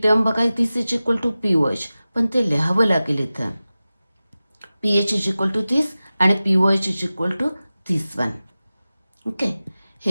टर्म बघा, this is equal to POH, पण ते लिहावं लागेल इथं. PH इज इक्वल टू दिस आणि POH is equal to this one. Okay,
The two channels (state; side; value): inverted; both; correlation -0.96